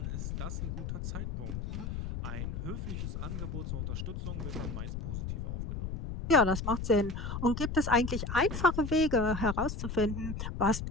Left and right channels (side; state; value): left; noise; rumble, 4 dB below the sound